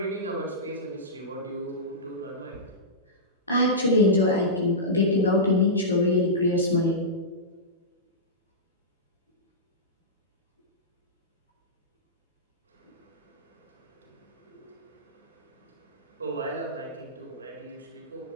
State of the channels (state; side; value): normal; both; correlation -0.15